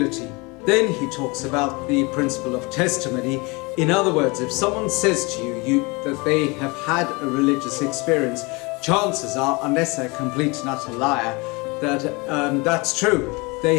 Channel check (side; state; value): right; quieter; 26.9 dB